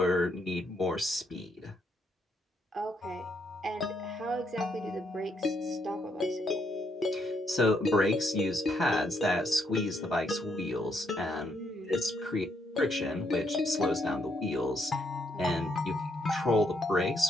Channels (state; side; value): normal; both; correlation 0.74